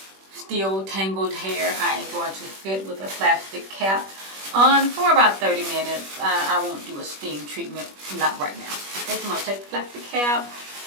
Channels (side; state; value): left; late; 21 ms